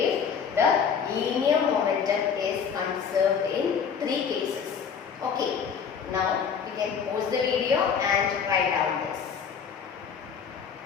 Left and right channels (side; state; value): right; quieter; 6.8 dB